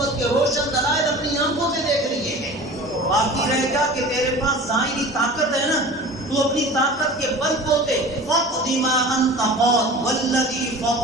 کے روشن دلائل اپنی آنکھوں سے دیکھ لیے ہیں۔ باقی رہ گا کہ تیرے پاس ظاہری طاقت ہے نا، تو اپنی طاقت کے بل بوتے فقد ما انت قاد والذی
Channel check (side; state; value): both; normal; correlation 0.39